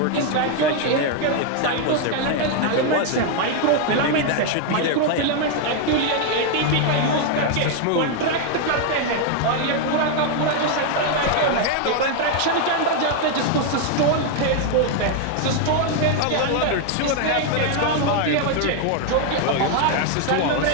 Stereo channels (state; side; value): different; both; correlation 0.00